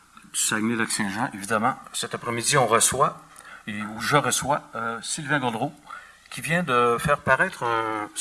du Saguenay-Lac-Saint-Jean. Évidemment, cet après-midi, on reçoit, ou je reçois, Sylvain Gaudreault, qui vient de faire paraître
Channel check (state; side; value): identical; both; correlation 1.00